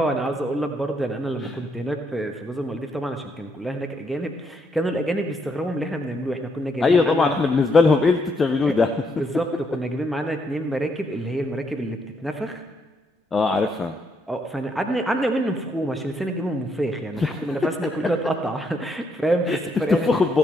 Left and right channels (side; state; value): both; normal; correlation 0.75